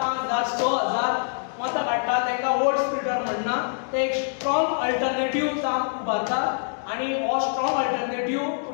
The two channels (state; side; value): silent; right; digital silence